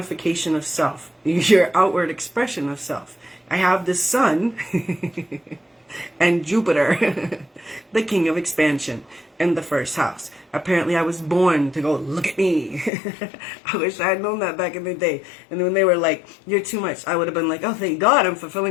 of self, your outward expression of self. I have the sun and Jupiter, the king of expansion, in the first house. Apparently I was born to go, look at me. I wish I had known that back in the day. And when they were like, you're too much, I would have been like, oh, thank God I'm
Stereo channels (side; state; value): right; drops out; at 12.9 s